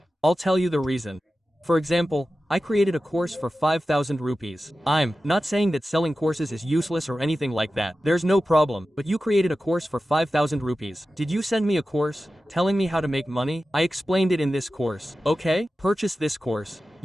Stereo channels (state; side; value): normal; both; correlation 0.94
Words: I'll tell you the reason. For example, I created a course for 5,000 rupees. I'm not saying that selling courses is useless or anything like that. There's no problem, but you created a course for 5,000 rupees. Did you send me a course telling me how to make money? I explained it in this course. Okay, purchase this course.